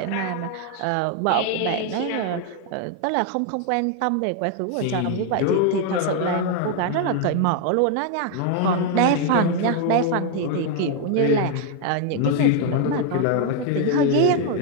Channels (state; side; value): different; both; correlation 0.01